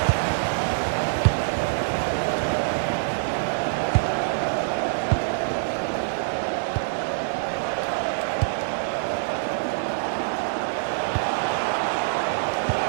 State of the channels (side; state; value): left; silent; digital silence